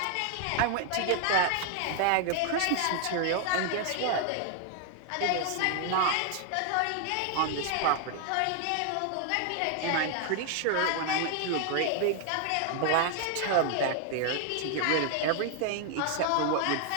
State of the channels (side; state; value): both; different; correlation 0.00